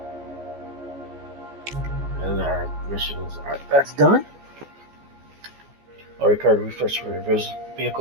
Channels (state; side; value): late; left; 14 ms